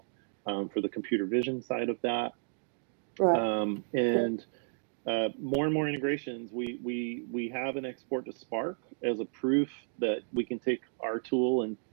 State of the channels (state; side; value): silent; left; digital silence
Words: for the computer vision side of that, Right. and more and more integrations. We have an export to Spark as a proof that we can take our tool and